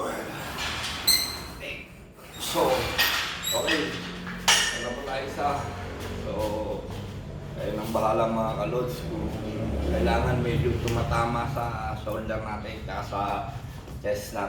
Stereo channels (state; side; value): identical; both; correlation 1.00